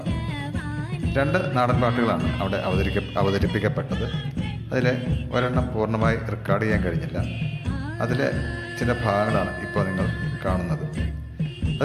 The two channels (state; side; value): identical; both; correlation 1.00